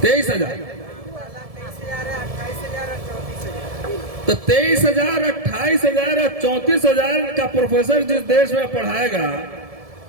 23,000। तो 23,000, 28,000 और 34,000 का प्रोफेसर जिस देश में पढ़ाएगा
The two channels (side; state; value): left; late; 1.7 ms